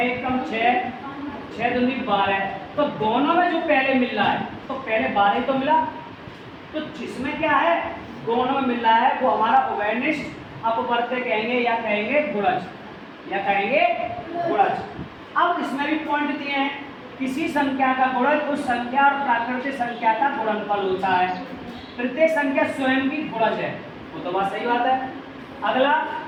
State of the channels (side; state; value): both; identical; correlation 1.00